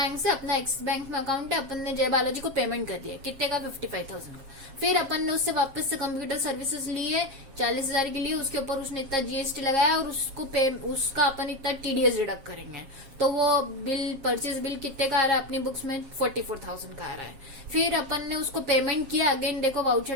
से, अपना एक्सिस बैंक में अकाउंट है, अपन ने जय बालाजी को पेमेंट कर दिया कितने का? 55,000 का। फिर अपन ने उससे वापस से कंप्यूटर सर्विसेज लिए 40,000 के लिए, उसके ऊपर उसने इतना जीएसटी लगाया और उसका अपन इतना टीडीएस डिडक्ट करेंगे। तो वो बिल, परचेज बिल कितने का आ रहा है अपनी बुक्स में? 44,000 का आ रहा है। फिर अपन ने उसको पेमेंट किया, अगेन देखो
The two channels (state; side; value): late; left; 7.4 ms